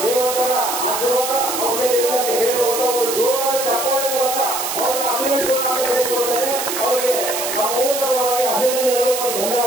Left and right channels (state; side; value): noise; right; hiss, 3 dB below the sound